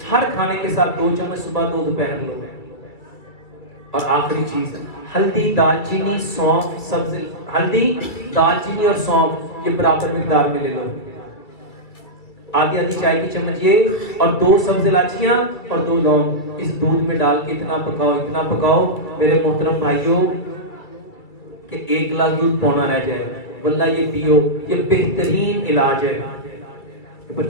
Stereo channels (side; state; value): right; late; 2.6 ms